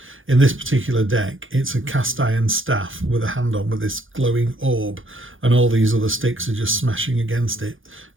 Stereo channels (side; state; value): left; late; 0.58 ms